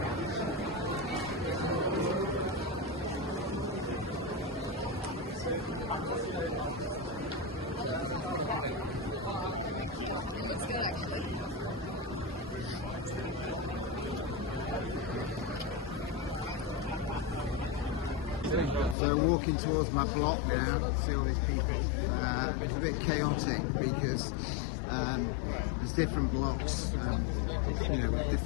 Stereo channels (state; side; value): drops out; right; at 18.9 s